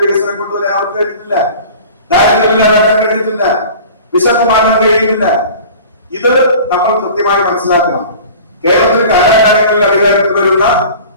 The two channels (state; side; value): inverted; both; correlation -0.42